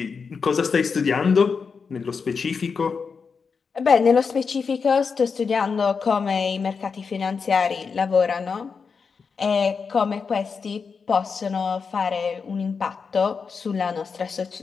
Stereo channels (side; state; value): right; quieter; 5.4 dB